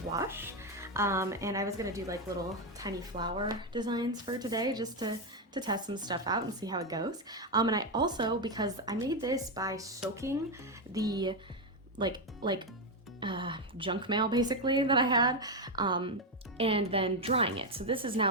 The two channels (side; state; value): both; normal; correlation 0.06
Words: gouache, and I was gonna do like little tiny flower designs for today just to test some stuff out and see how it goes. And I also, because I made this by soaking the junk mail basically that I had, and then drying it. So this is